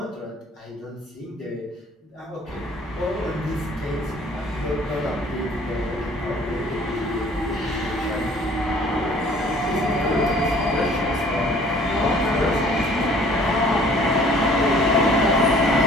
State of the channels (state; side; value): normal; both; correlation 0.54